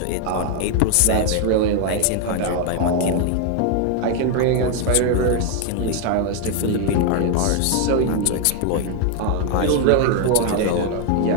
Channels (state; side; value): different; both; correlation 0.00